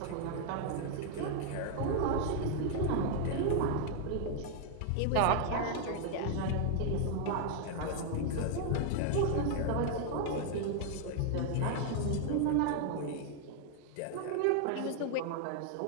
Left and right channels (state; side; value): different; both; correlation 0.00